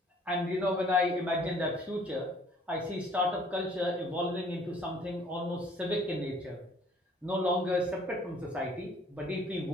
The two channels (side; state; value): both; normal; correlation 0.57